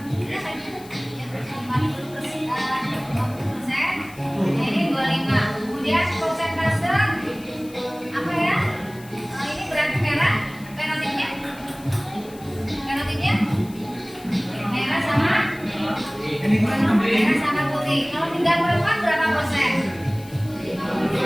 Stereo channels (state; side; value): noise; left; hiss, 22 dB below the sound